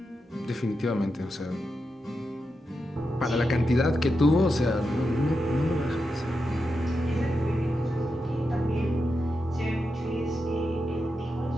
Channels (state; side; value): normal; both; correlation 0.88